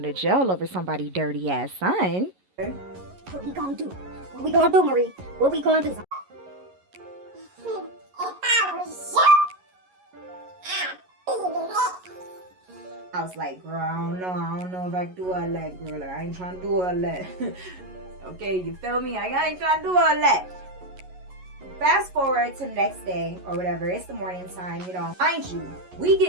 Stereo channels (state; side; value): late; left; 11 ms